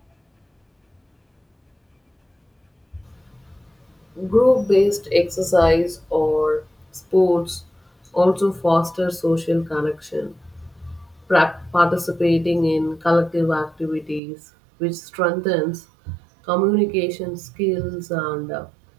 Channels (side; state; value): left; drops out; at 14.2 s